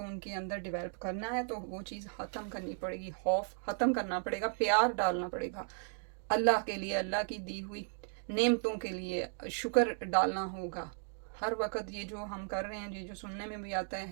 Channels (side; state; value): left; silent; 54 dB below the other